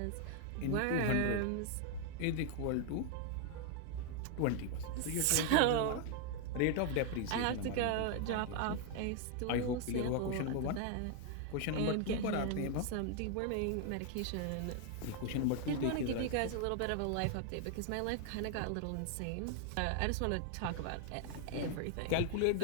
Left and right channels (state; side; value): different; both; correlation 0.00